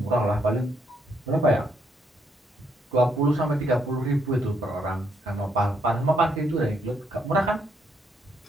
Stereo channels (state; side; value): normal; both; correlation 0.74